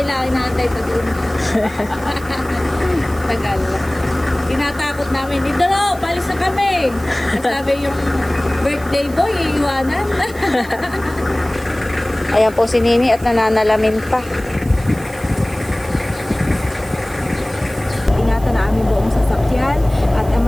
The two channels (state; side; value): noise; right; hiss, 20 dB below the sound